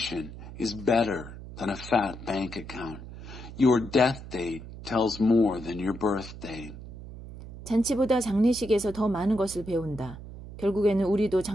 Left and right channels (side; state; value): right; noise; hum, 13 dB below the sound